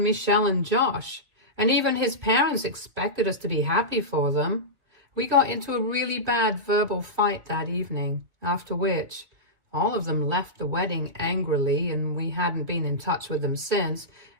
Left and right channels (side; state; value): left; late; 2.8 ms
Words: Michelle and Josh, and even his parents expected us to be happy for them. We got into a really bad verbal fight that evening, after which all of them left the wedding angrily, and we hadn't been in touch with them since,